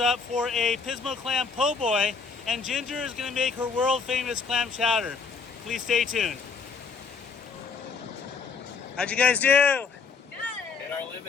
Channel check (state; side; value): quieter; right; 5.2 dB